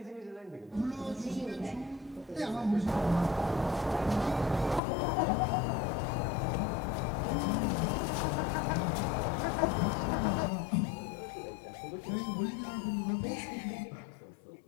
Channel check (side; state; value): right; drops out; at 4.8 s